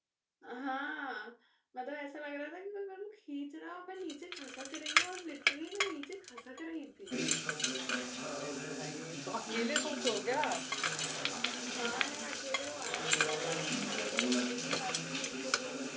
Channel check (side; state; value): both; identical; correlation 1.00